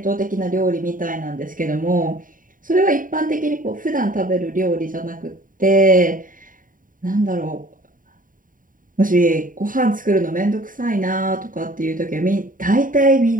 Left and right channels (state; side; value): late; left; 0.39 ms